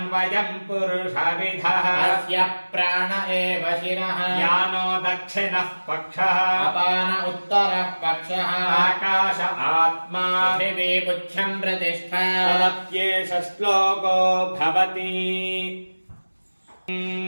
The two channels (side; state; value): both; inverted; correlation -1.00